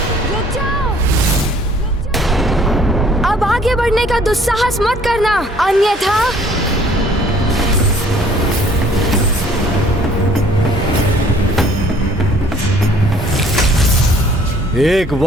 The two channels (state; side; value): normal; both; correlation 0.57